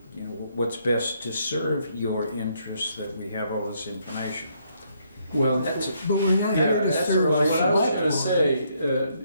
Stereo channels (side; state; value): both; inverted; correlation -0.72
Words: what's best to serve your interests, that we have all this information. Well, That's, But we're not here to that's serve well, the what I was select gonna